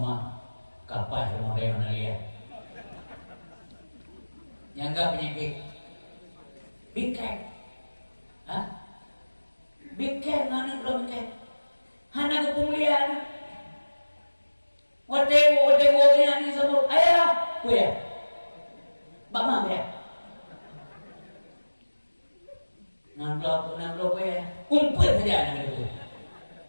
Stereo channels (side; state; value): both; inverted; correlation -1.00